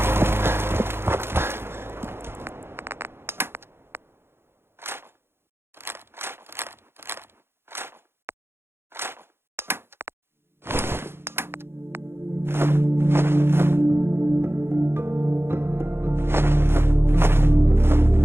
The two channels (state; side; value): late; left; 0.11 ms